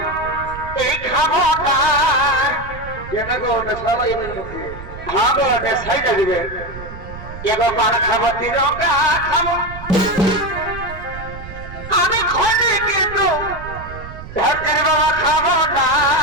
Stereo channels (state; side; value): noise; right; rumble, 12 dB below the sound